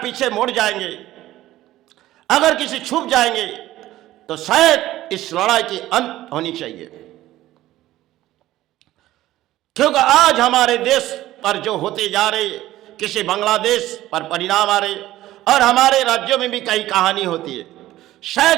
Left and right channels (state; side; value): quieter; left; 15.2 dB